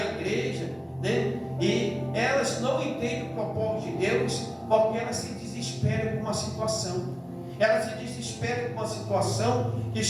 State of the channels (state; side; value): identical; both; correlation 1.00